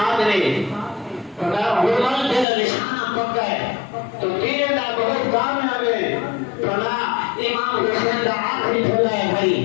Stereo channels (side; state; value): right; drops out; at 2.5 s